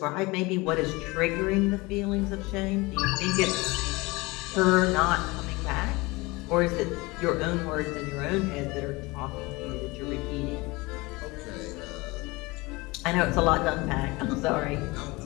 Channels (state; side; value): quieter; right; 23.5 dB